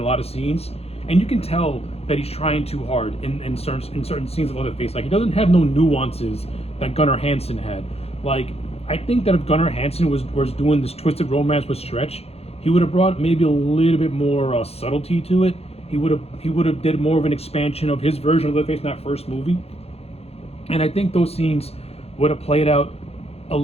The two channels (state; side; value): late; right; 0.29 ms